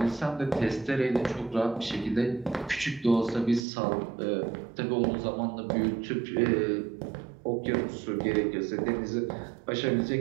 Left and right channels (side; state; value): left; drops out; at 3.6 s